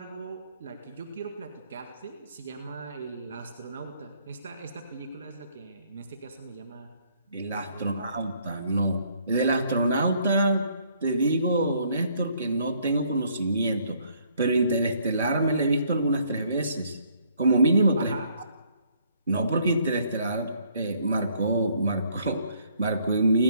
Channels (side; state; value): both; inverted; correlation -0.65